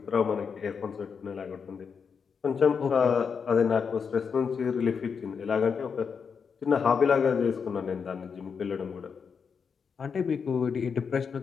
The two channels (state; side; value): quieter; right; 6.1 dB